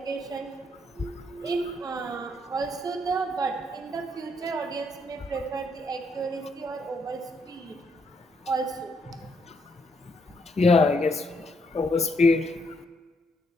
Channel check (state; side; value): normal; both; correlation 0.75